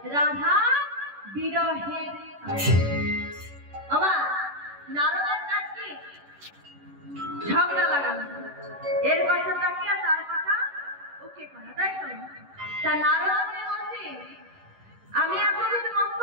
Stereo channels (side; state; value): left; late; 10 ms